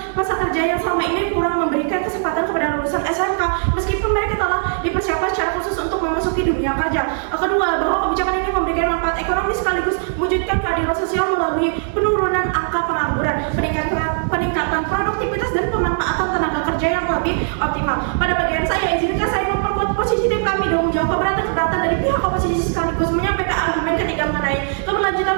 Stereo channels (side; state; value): left; silent; digital silence